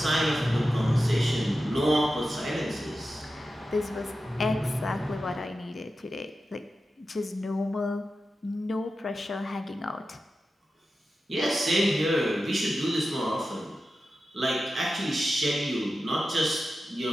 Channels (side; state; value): both; normal; correlation 0.92